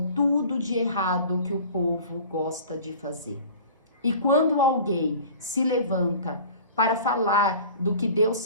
tudo de errado que o povo gosta de fazer. E quando alguém se levanta para falar do que Deus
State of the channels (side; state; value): both; inverted; correlation -0.42